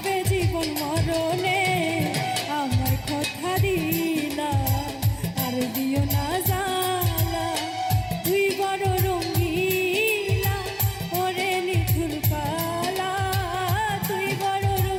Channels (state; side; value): identical; both; correlation 1.00